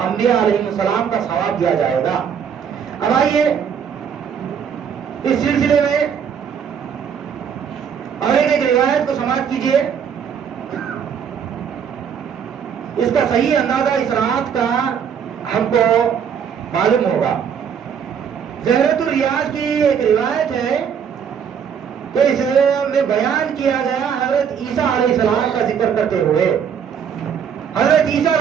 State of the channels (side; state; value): left; quieter; 7.6 dB